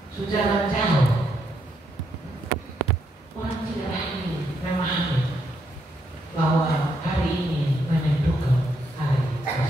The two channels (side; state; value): both; normal; correlation 0.78